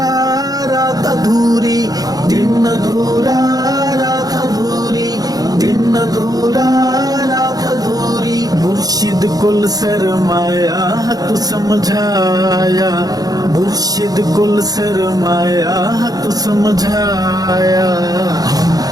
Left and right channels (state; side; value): late; left; 0.18 ms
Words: رات ادھوری، دن ادھورا رات ادھوری، دن ادھورا رات ادھوری، مرشد کل سرمایا حق سمجھایا، مرشد کل سرمایا حق سمجھایا، ہم